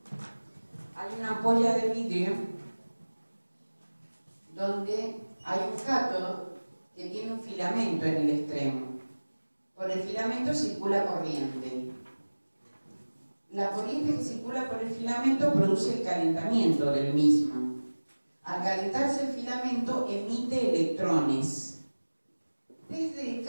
Hay una ampolla de vidrio donde hay un cátodo que tiene un filamento en el extremo. Por el filamento circula corriente. La corriente que circula por el filamento produce el calentamiento del mismo. Al calentarse el filamento emite electrones desde el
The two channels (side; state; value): both; inverted; correlation -1.00